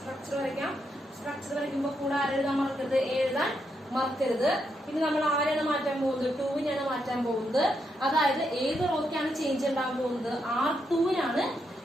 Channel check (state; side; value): normal; both; correlation 0.81